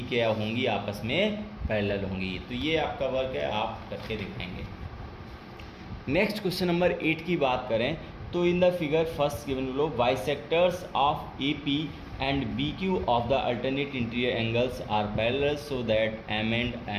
क्या होंगी, आपस में पैरेलल होंगी। तो ये आपका वर्क है, आप करके दिखाएंगे। नेक्स्ट क्वेश्चन नंबर 8 की बात करें तो in the figure first given below bisectors of AP and BQ of the alternate interior angles are parallel so that M and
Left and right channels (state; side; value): identical; both; correlation 1.00